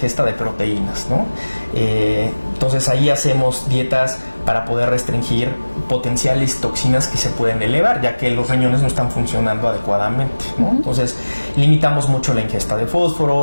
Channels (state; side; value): inverted; both; correlation -1.00